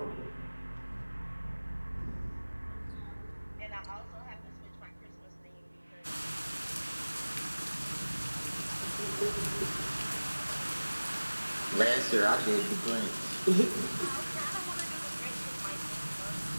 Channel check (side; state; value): both; inverted; correlation -1.00